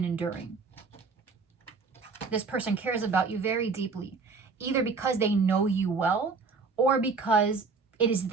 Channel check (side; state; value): left; quieter; 4.5 dB